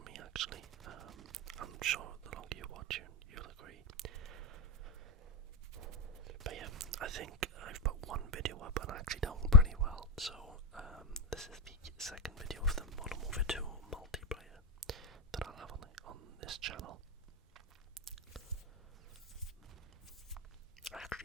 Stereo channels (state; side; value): normal; both; correlation 0.13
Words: me actually. I'm sure the longer you watch it, you'll agree. But yeah, I think I've put one video up and actually done pretty well. So this is the second video of the Modern Warfare 2 multiplayer that I'll have on this channel. I